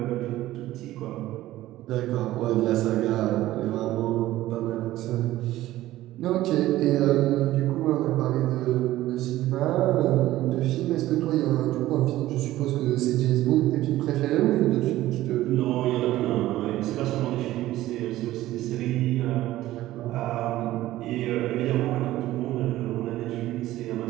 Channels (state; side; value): quieter; left; 15.4 dB